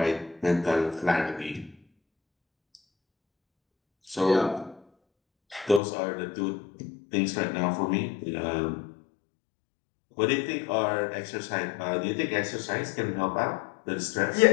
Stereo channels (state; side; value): drops out; right; at 5.8 s